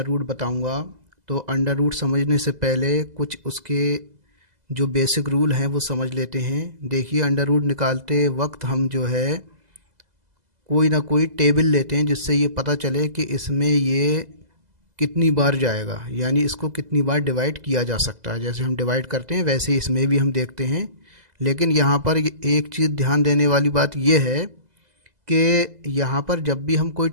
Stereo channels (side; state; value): left; late; 2.0 ms